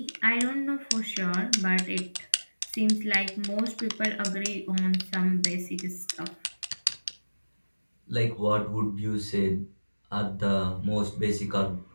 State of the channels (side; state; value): both; inverted; correlation -1.00